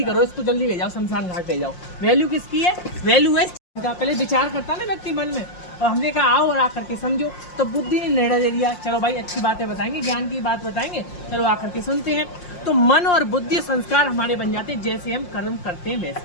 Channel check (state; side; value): late; right; 5.6 ms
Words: करो इसको, जल्दी ले जाओ, शमशान घाट ले जाओ। वैल्यू किसकी है, वैल्यू है पहले विचार करता ना व्यक्ति मन में, और हमने कहा आओ और आकर के समझो, तो बुद्धि ने निर्णय ले लिया, चलो भाई अच्छी बातें बताएंगे, ज्ञान की बात बताएंगे, चलो आकर के सुनते हैं। तो मन और बुद्धि संस्कार हमारे बन जाते हैं, जैसे हम कर्म करते हैं